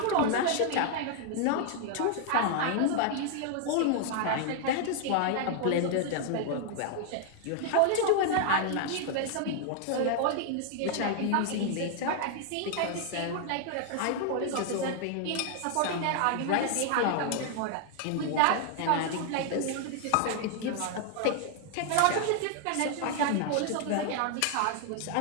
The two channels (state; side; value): different; both; correlation 0.00